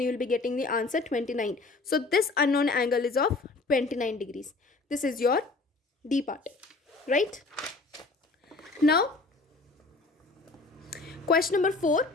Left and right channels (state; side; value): quieter; right; 3.6 dB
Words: you will be getting the answer 29. So this unknown angle is of 29 degrees. This is your D part, right? Now, question number 4.